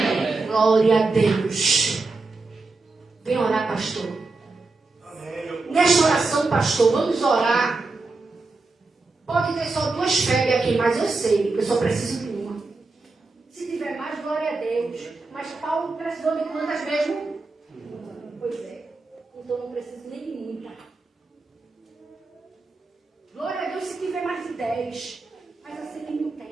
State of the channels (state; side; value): quieter; left; 3.7 dB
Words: Glória a Deus. Vem orar, pastor. Amém. Nesta oração, pastor, vamos orar. Pode ter só 2 febres aqui, mas eu sei que eu só preciso de uma. Se tiver mais, glória a Deus. Mas Paulo precisou de quantas mesmo? Pois é. Então não preciso nem de muita. Glória a Deus se tiver mais de 10. Mas assim não